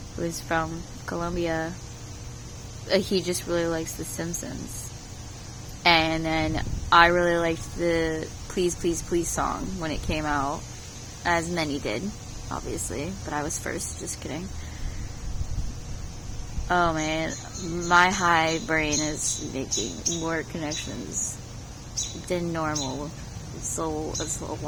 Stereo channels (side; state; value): both; identical; correlation 1.00